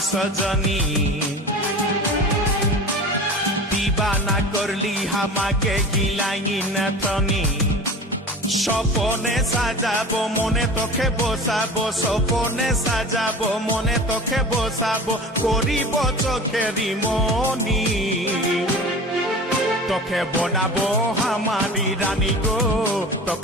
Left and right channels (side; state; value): both; normal; correlation 0.36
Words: सजनी दीवाना करली हामाके गिलाई नतनी স্বপনে সাজাবো মনে তোকে বসাবো স্বপনে সাজাবো মনে তোকে বসাবো করিব চোখেরি মনি তোকে বনাবো হামারি রানী গো